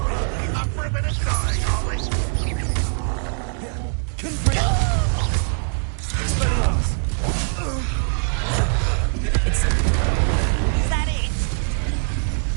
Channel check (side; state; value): left; silent; digital silence